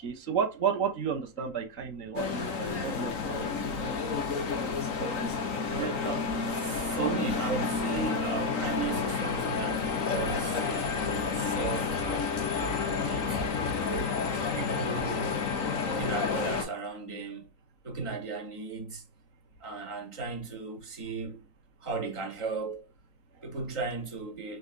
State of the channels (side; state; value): right; late; 3.9 ms